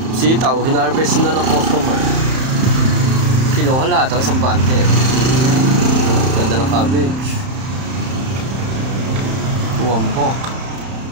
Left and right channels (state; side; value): late; left; 31 ms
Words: sitaw, hinarvest na ng customer. Kinuha lahat ang isang bante. Ganda ng cabbage. Buwambok.